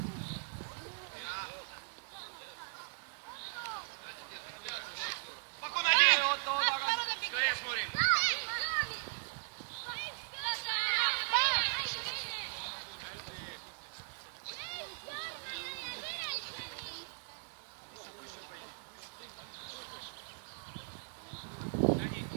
Спокойно, один. Скорее смотрим.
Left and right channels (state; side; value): silent; left; digital silence